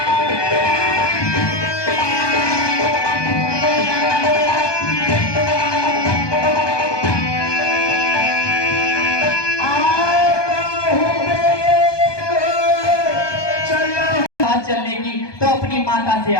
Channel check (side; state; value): right; late; 1.2 ms